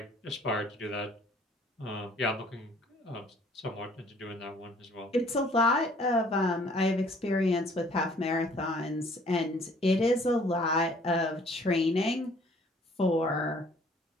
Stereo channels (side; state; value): both; normal; correlation 0.57